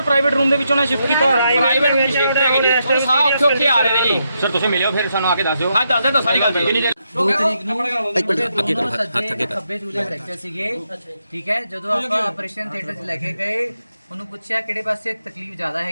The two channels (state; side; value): inverted; both; correlation -0.81